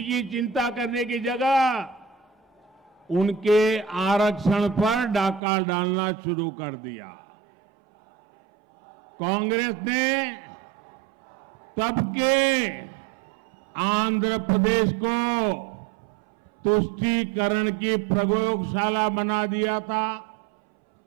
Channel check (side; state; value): left; drops out; at 5.4 s